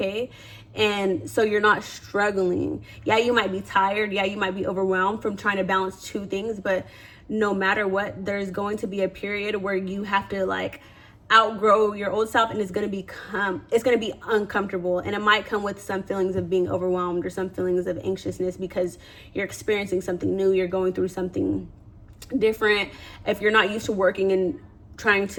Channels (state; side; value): identical; both; correlation 1.00